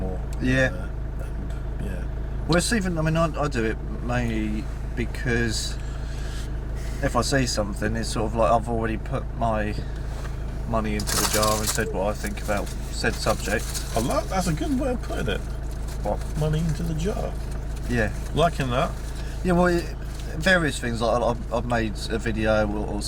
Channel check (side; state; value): both; identical; correlation 1.00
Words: Well, it's even. I mean, I do it mainly because if I see something, it's sort of like I've already put my money into the jar and said what I think about said subject. That's a good way of putting it. What? Money into the jar. Yeah. Liking that. Yeah, well, various things. Like I've made a video or